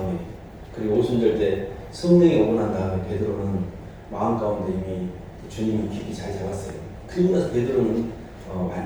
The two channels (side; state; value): both; identical; correlation 1.00